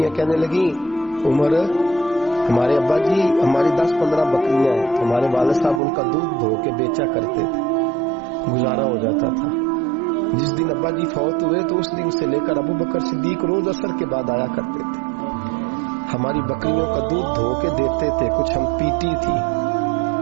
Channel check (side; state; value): left; drops out; at 5.8 s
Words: کہنے لگی عمر ہمارے ابا جی ہماری 10-15 بکریاں ہیں، تو ہمارے والد صاحب ان کا دودھ دھو کے بیچا کرتے تھے، گزارا ہو جاتا تھا۔ جس دن ابا جی فوت ہوئے تو اس دن سے لے کر ابو بکر صدیق روز عصر کے بعد آیا کرتے تھے، ہماری بکریوں کا دودھ دھو کے دیتے تھے، کچھ ہم پیتی تھی،